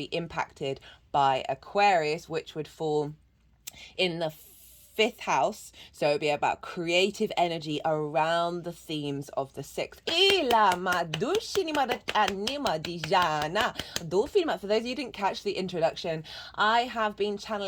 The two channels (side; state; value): both; identical; correlation 1.00